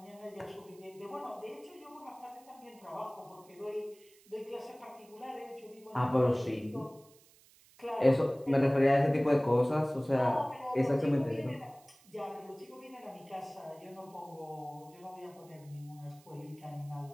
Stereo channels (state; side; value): noise; right; hiss, 27 dB below the sound